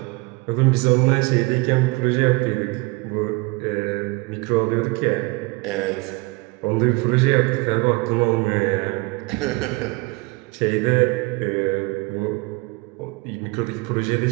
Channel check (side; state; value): left; quieter; 25.5 dB